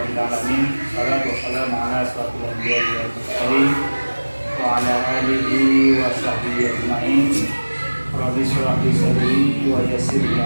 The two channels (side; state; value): both; inverted; correlation -1.00